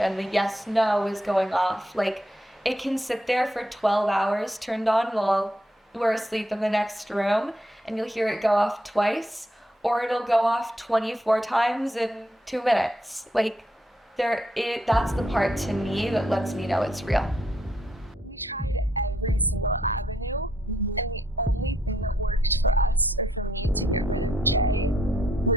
The yes, no is going off. It can sit there for 12 hours turned on while we're asleep in the next room and you'll hear it go off twice, or it'll go off 24 times in 2 minutes. That's the part to me that lets me know it's real. We tried every single avenue, and the only thing that worked for us or for me to get rid of Jay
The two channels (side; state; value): both; normal; correlation 0.75